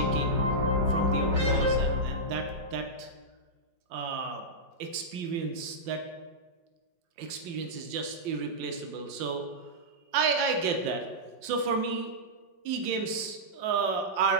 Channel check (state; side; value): late; left; 5.8 ms